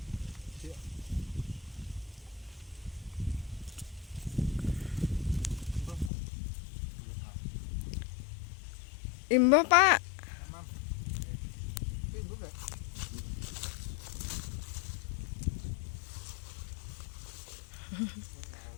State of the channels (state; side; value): drops out; right; at 6.1 s